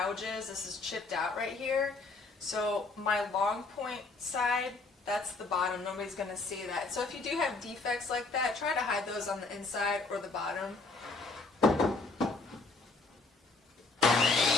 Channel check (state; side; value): quieter; right; 3.7 dB